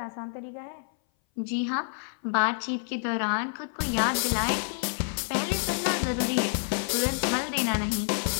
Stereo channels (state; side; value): silent; right; 58 dB below the other